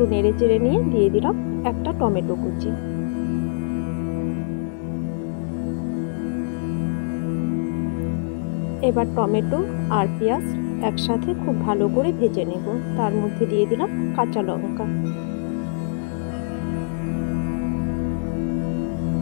নেড়ে চেড়ে নিয়ে দিয়ে দিলাম একটা টমেটো কুচি। এবার টমেটো আর পেঁয়াজ একসাথে খুব ভালো করে ভেজে নেব। তার মধ্যে দিয়ে দিলাম কাঁচা লঙ্কা।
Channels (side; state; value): right; silent; 63 dB below the other